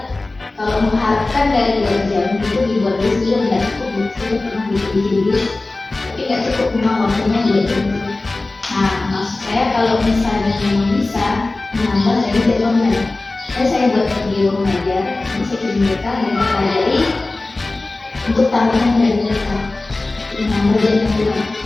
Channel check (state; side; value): quieter; right; 3.2 dB